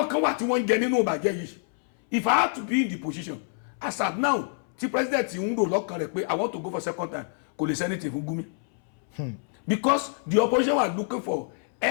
kan wà tí wọ́n ń jẹ nínú ìbàjẹ́ yìí if I had to be in the position as at now tí president ń rò lọ́kàn rẹ̀ pé I want to go for second time kò lè sẹ́nitì fún Gumi because the opposition was looking for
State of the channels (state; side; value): silent; right; 61 dB below the other